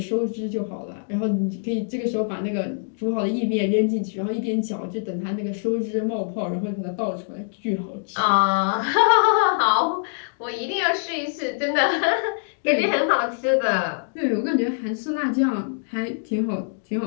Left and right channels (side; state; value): right; silent; digital silence